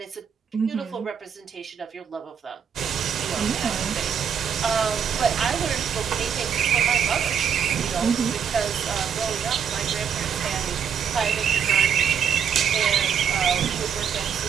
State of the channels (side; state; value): left; quieter; 7.6 dB